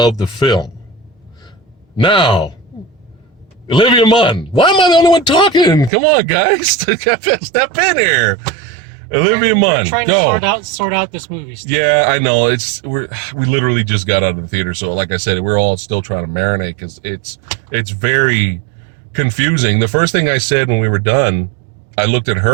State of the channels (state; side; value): drops out; left; at 5.9 s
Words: the film. Now, Olivia Munn. Why am I the only one talking? Come on, guys. Step in here. Olivia Munn. Trying to sort out this movie stuff. Yeah, I know. We literally just got out of the theater, so like I said, we're all still trying to marinate because it's very confusing. The first thing I said when we were done, I looked at